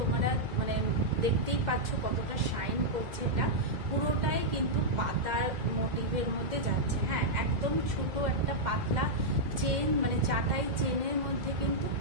দেখতেই পাচ্ছ কতটা শাইন করছে। এটা পুরোটাই কিন্তু পাতার মোটিভের মধ্যে যাচ্ছে। হ্যাঁ, একদম ছোট একটা পাতলা চেন, চাটাই চেনের মধ্যে কিন্তু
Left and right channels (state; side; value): late; left; 2.1 ms